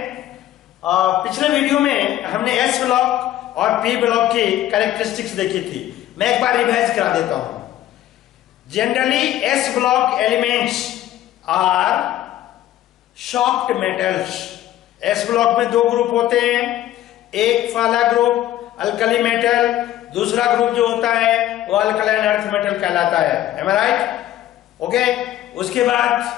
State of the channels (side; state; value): right; quieter; 13.3 dB